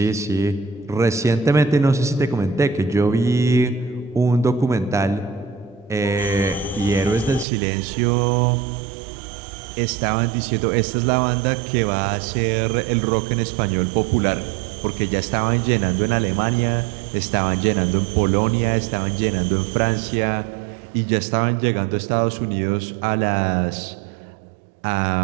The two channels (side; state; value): left; drops out; at 7.5 s